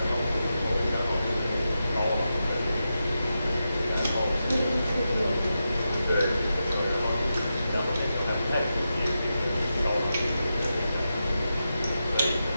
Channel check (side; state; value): both; inverted; correlation -0.89